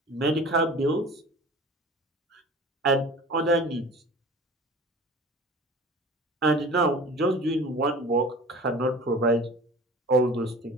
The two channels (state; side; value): normal; both; correlation 0.41